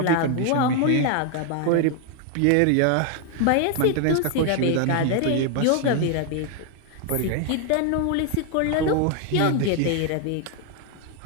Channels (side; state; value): both; different; correlation 0.00